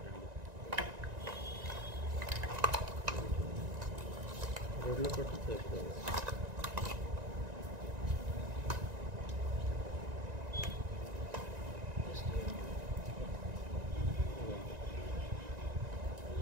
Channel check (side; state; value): left; late; 1.9 ms